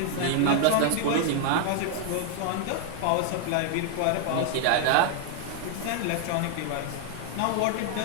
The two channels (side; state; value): both; different; correlation 0.00